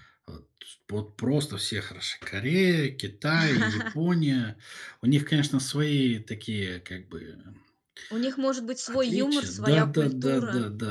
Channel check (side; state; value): both; identical; correlation 1.00